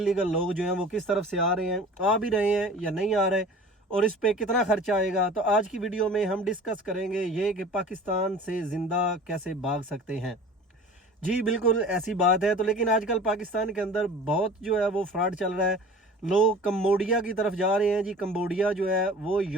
लोग जो हैं वो किस तरफ से आ रहे हैं, आ भी रहे हैं या नहीं आ रहे, और इस पे कितना खर्चा आएगा। तो आज की वीडियो में हम डिस्कस करेंगे ये कि पाकिस्तान से ज़िंदा कैसे भाग सकते हैं। जी बिल्कुल ऐसी बात है। तो लेकिन आजकल पाकिस्तान के अंदर बहुत जो है वो फ्रॉड चल रहा है। लोग कम्बोडिया की तरफ जा रहे हैं। जी कम्बोडिया जो है वो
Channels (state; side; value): normal; both; correlation 0.42